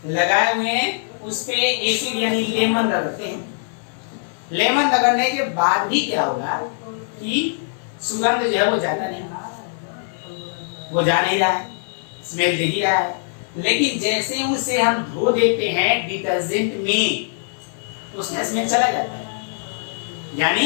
उस पे एसिड यानी लेमन रगड़ते हैं। लेमन रगड़ने के बाद भी क्या होगा कि सुगंध जो है वो जाता नहीं, वो जा नहीं रहा है, स्मेल दे ही रहा है, लेकिन जैसे उसे हम धो देते हैं डिटर्जेंट में, उसमें स्मेल चला जाता है।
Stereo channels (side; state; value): right; silent; 56 dB below the other